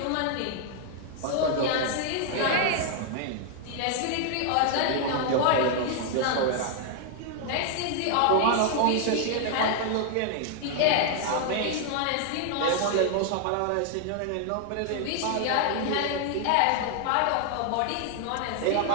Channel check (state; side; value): different; both; correlation 0.00